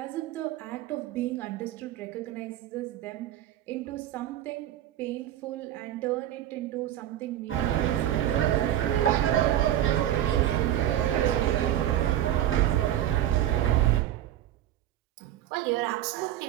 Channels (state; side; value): quieter; left; 12.3 dB